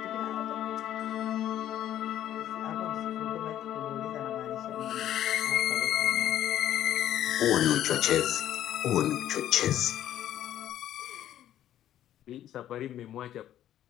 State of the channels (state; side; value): quieter; right; 11.9 dB